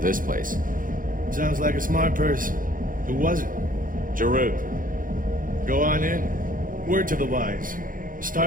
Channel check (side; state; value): left; late; 0.40 ms